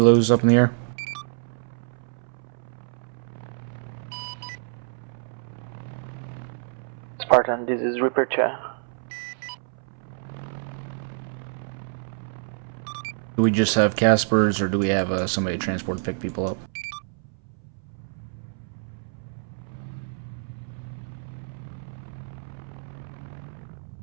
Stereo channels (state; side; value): silent; left; 60 dB below the other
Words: up in the air? Spartan, this is Reaper Cha. Do we just have Caspers, or do we have somebody transport to pick people up?